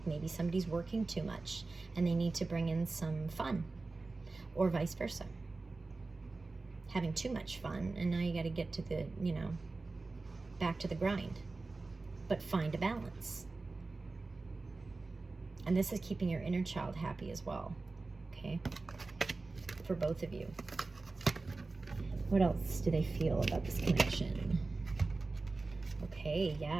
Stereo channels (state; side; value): quieter; left; 3.6 dB